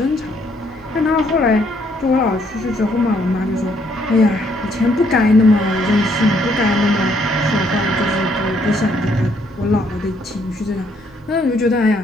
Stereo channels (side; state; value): both; normal; correlation 0.69